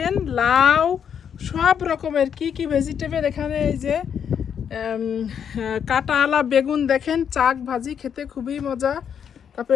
লাউ, সব রকমের কি কি ভেজিটেবল এখানে। এই যে কাঁটাওয়ালা বেগুন, দেখেন চাক ভাজি খেতে খুবই মজা। তারপরে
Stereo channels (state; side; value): quieter; right; 7.9 dB